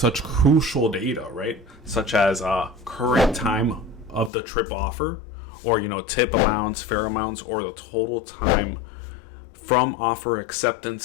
crucial data, right? Such as current time of the trip offer, or, you know, tip amounts, fare amounts, or the total time from offer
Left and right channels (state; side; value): drops out; right; at 4.3 s